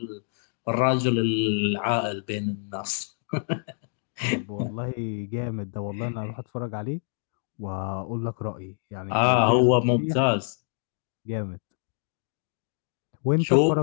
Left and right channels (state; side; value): silent; right; 60 dB below the other